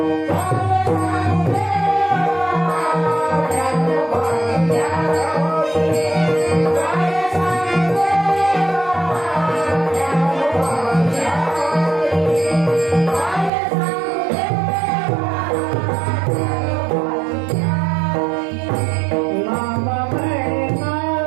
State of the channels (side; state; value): left; drops out; at 13.5 s